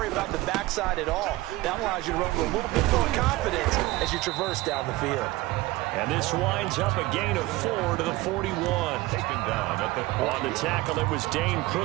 about the backside at all. That allows you to run with a little bit more confidence as you traverse down the field. And this winds up a gain of 4 to the 41. Taken down at the 40. On the tackle, it was Dane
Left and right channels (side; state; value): left; quieter; 19.3 dB